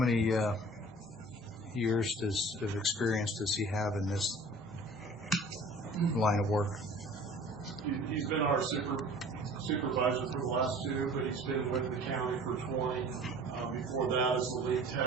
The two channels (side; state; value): both; normal; correlation 0.46